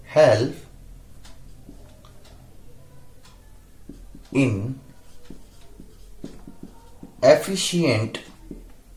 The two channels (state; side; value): identical; both; correlation 1.00